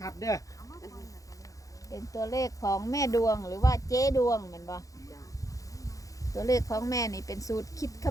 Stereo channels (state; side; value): late; right; 0.16 ms